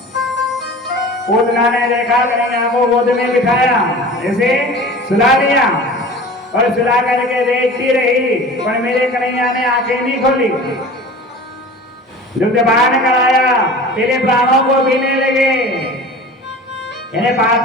पूतना ने देखा कन्हैया को गोद में बिठाया, ऐसे सुला दिया और सुला करके देखती रही, पर मेरे कन्हैया ने आंखें नहीं खोली। दुग्धपान कराया, पहले प्राणों को पीने लगे, इन्हें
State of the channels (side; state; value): both; normal; correlation 0.39